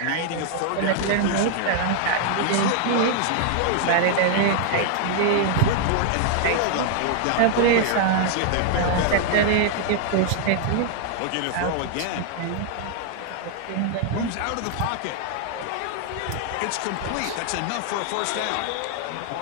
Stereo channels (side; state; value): both; different; correlation 0.00